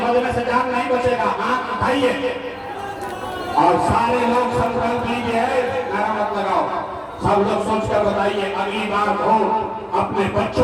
से जान नहीं बचेगा। हाथ उठाइए और सारे लोग संकल्प लीजिए, नारा मत लगाओ, सब लोग सोचकर बताइए, अगली बार वोट अपने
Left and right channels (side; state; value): both; identical; correlation 1.00